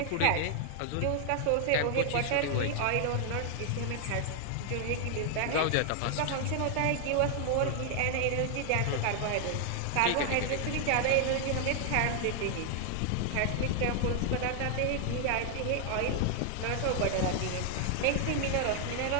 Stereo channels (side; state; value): both; different; correlation 0.00